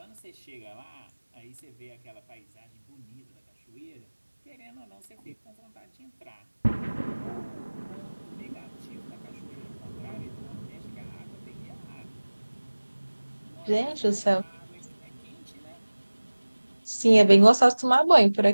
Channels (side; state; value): both; inverted; correlation -1.00